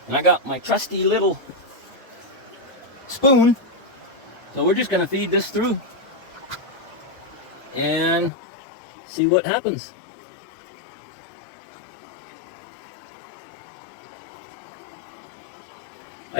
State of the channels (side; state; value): right; drops out; at 8.3 s